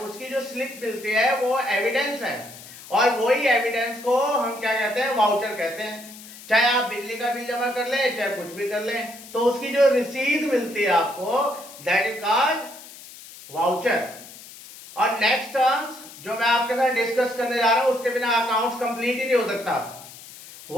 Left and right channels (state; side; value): noise; left; hiss, 17 dB below the sound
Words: उसकी जो स्लिप मिलती है वो एविडेंस है, और वही एविडेंस को हम क्या कहते हैं? वाउचर कहते हैं। चाहे आप बिजली का बिल जमा कर ले, चाहे कुछ भी कर ले, तो उसकी जो रसीद मिलती है आपको, दैट इज कॉल्ड वाउचर। और नेक्स्ट टर्म्स जो मैं आपके साथ डिस्कस करने जा रहा हूं उसके बिना अकाउंट्स कंप्लीट ही नहीं हो सकता,